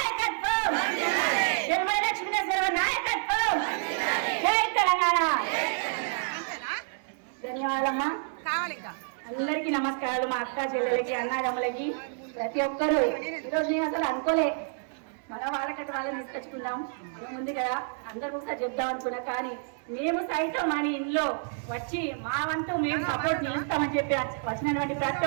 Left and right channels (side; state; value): left; silent; digital silence